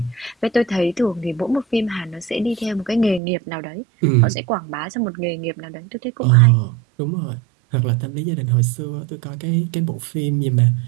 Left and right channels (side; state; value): left; drops out; at 3.2 s